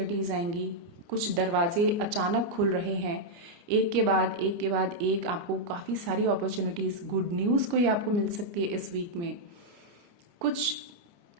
आएंगी, कुछ दरवाजे अचानक खुल रहे हैं, एक के बाद एक के बाद एक आपको काफ़ी सारी अपॉर्चुनिटीज, गुड न्यूज़ कोई आपको मिल सकती है इस वीक में। कुछ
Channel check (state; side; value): late; left; 29 ms